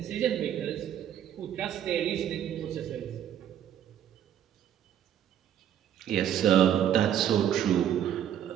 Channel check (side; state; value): left; quieter; 10.3 dB